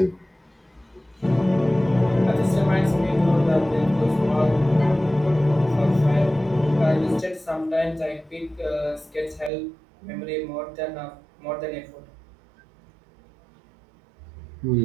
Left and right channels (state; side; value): drops out; left; at 9.5 s